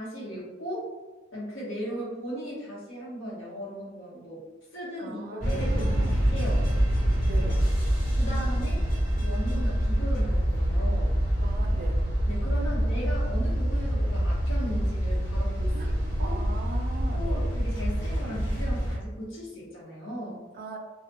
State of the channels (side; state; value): both; normal; correlation 0.92